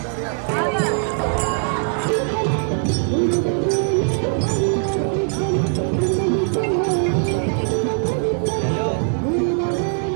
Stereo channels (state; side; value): silent; left; 57 dB below the other